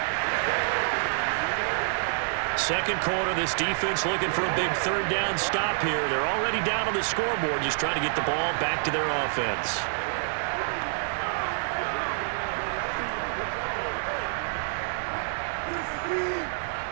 Second quarter, this defense looking for a big 3rd down stop here. They're already down on the scoreboard, just trying to get the ball back to their offense.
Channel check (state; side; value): silent; left; digital silence